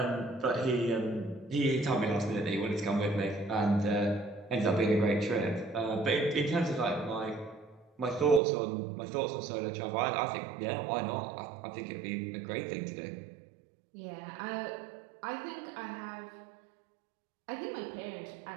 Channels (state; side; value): drops out; left; at 8.4 s